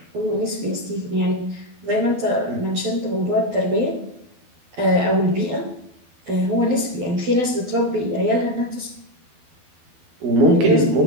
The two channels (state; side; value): late; left; 12 ms